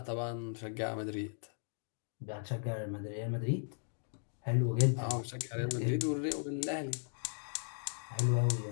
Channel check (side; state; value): right; silent; digital silence